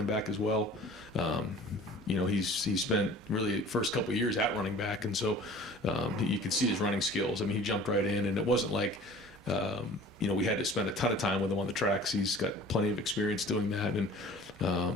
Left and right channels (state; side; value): normal; both; correlation 0.45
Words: back as well. He's spent really the first couple of years at running back, and so you could see his running skills. I mean, he jumped right in, and it wasn't like we had to spend a ton of time with him on the tracks. He's got plenty of experience doing that, and